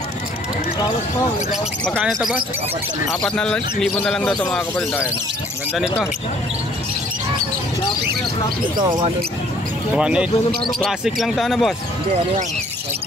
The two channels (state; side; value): normal; both; correlation 0.59